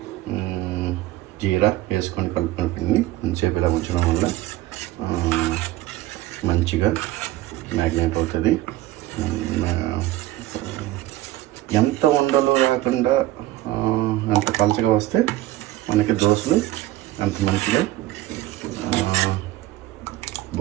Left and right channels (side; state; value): left; quieter; 16.0 dB